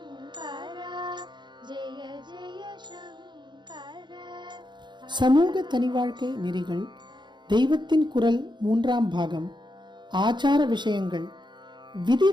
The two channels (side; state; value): left; late; 0.22 ms